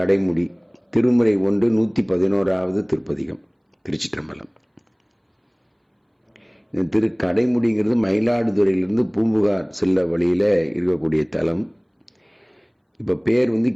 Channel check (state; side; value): identical; both; correlation 1.00